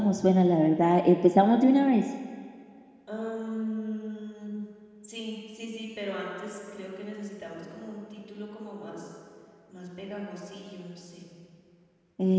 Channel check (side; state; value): both; identical; correlation 1.00